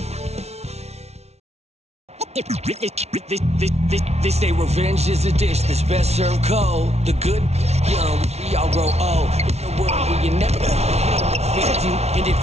They say revenge is a dish that's best served cold. The good, young, we all grow old. In a world where you never fit you, and if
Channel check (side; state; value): left; late; 0.31 ms